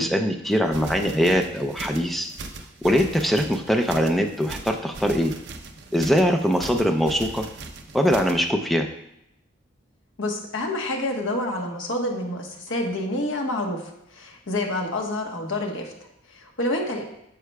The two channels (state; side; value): normal; both; correlation 0.69